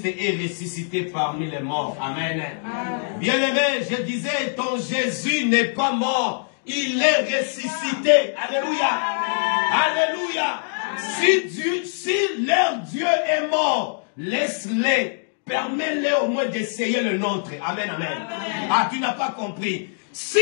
est ressuscité parmi les morts. Amen. Bien-aimé, je disais, ton Jésus n'est pas mort. Il est ressuscité. Alléluia. Alléluia. Si leur Dieu est mort, laisse-les. Permets-les au moins d'essayer le nôtre. Amen, amen. Ah, tu n'as pas compris. Si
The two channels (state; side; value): silent; right; digital silence